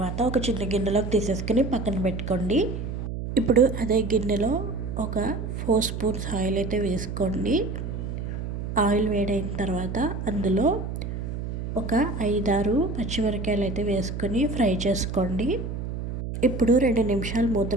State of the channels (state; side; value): noise; right; hum, 5 dB below the sound